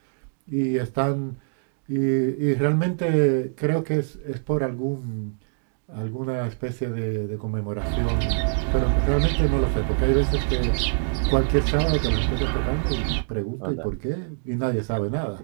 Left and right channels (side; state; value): left; silent; digital silence